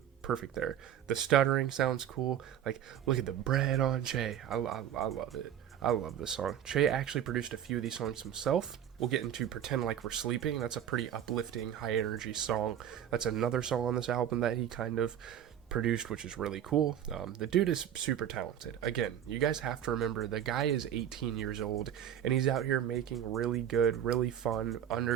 perfect there. The stuttering sounds cool. Like, look at the bread on Che. I love it. I love this song. Che actually produced a few of these songs himself. We'll get into Pretend Like We're Sleeping. That's a pretty uplifting, high energy song. That's another song on this album that he kind of produced, which is really cool. The dude is super talented. Again, you guys have to remember, the guy is 18 years old and he's out here making really good, really fun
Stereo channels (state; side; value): quieter; left; 10.0 dB